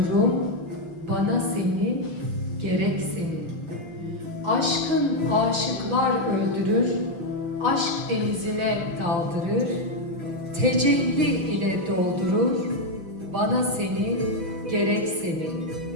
bana seni, gerek seni. Aşkın aşıklar öldürür, aşk denizine daldırır. Tecelli ile doldurur, bana seni, gerek seni.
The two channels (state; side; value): late; left; 6.3 ms